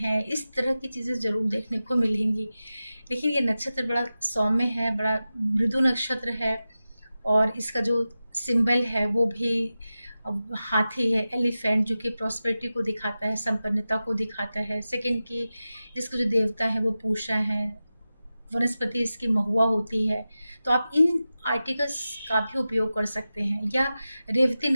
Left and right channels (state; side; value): inverted; both; correlation -0.94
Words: इस तरह की चीज़ें ज़रूर देखने को मिलेंगी। लेकिन ये नक्षत्र बड़ा सौम्य है, बड़ा मृदु नक्षत्र है और इसका जो सिंबल है वो भी हाथी है, एलिफेंट, जो कि प्रॉस्पेरिटी को दिखाता है, संपन्नता को दिखाता है। सेकंड की इसके जो देवता है वो पूषा है, वनस्पति इसकी महुआ होती है। तो आप इन आर्टिकल्स का भी उपयोग कर सकते हैं। या रेवती